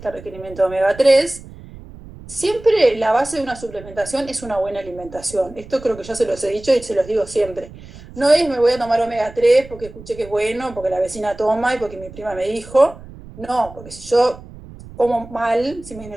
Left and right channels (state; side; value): noise; right; rumble, 17 dB below the sound